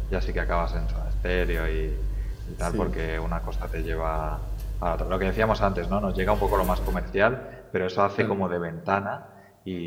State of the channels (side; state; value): both; identical; correlation 1.00